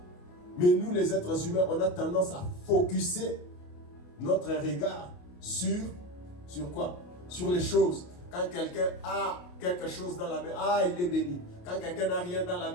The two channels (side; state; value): right; late; 28 ms